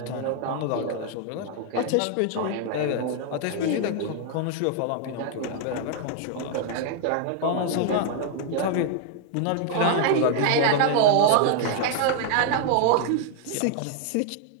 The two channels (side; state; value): both; different; correlation 0.00